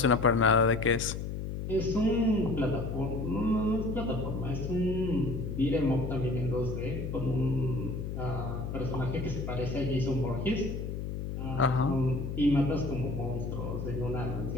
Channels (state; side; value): noise; left; hum, 5 dB below the sound